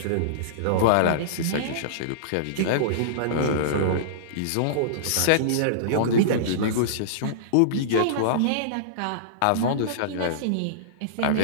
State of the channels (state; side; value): different; both; correlation -0.03